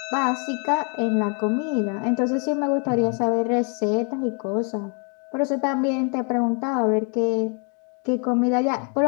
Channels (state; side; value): quieter; right; 38.6 dB